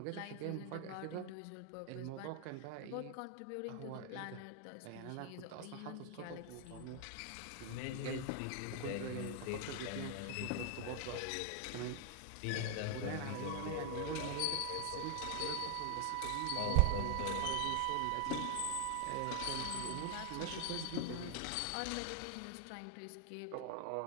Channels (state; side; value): different; both; correlation 0.00